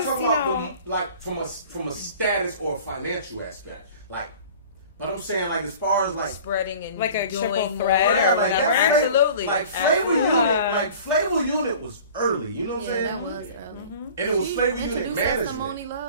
you talking know. about like from a status or a financial aspect. Like, but I'm saying, like, as far as, like, Spreading and Like a doing triple more, thread yeah, or like, whatever. that's Flavor- Absolutely. like, Flavor Absolutely. Unit, like, Flavor Unit was early, you know what I'm Yeah, saying? that was. And it was Flavor Unit Introduced us to management. Moni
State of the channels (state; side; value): inverted; both; correlation -0.44